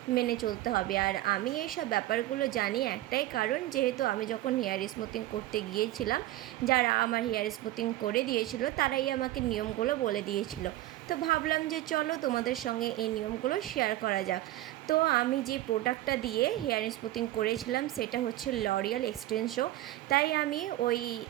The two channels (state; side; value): quieter; left; 15.6 dB